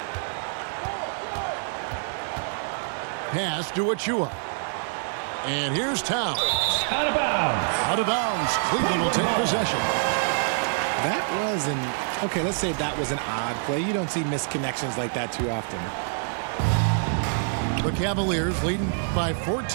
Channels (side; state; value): left; silent; digital silence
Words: Pass to Achua. And here's Towns. Out of bounds. Out of bounds. Cleveland will take possession. That was okay, let's say that was an odd play. You don't see missed connections like that too often. The Cavaliers leading by